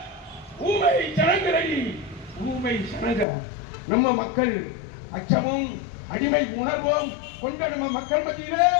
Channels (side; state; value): right; drops out; at 3.2 s